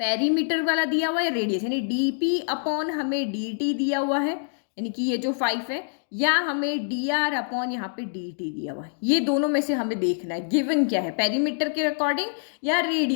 वाला दिया हुआ है, रेडियस यानी dp/ हमें dt दिया हुआ है, यानी कि ये जो 5 है, या हमें dr/ यहाँ पे dt दिया हुआ है। ये दोनों में से हमें देखना है गिवन क्या है, पेरीमीटर के अकॉर्डिंग या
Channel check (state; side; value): silent; right; digital silence